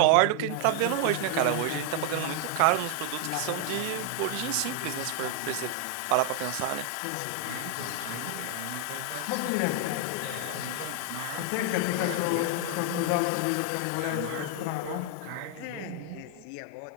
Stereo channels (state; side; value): different; both; correlation 0.00